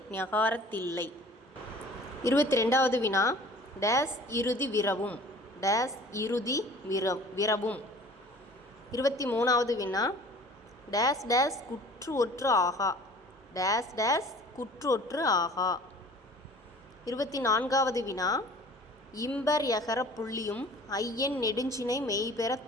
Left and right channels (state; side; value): normal; both; correlation 0.47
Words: ஞகாரத்தில்லை. 22வது வினா, டேஸ் இறுதி விரவும். டேஸ் இறுதி விரவும். 23வது வினா, டேஸ் டேஸ் குற்று ஒற்று ஆகா. டேஸ் டேஸ் குற்று ஒற்று ஆகா. 24வது வினா, இம்பர் யகர புள்ளியும் ஐயன் நெடுஞ்சினை மெய்பெற